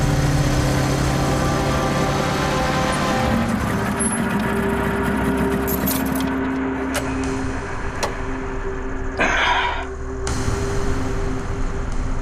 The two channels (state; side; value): identical; both; correlation 1.00